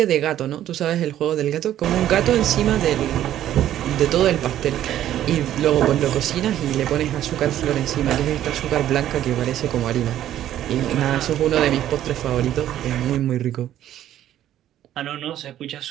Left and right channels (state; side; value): quieter; left; 12.0 dB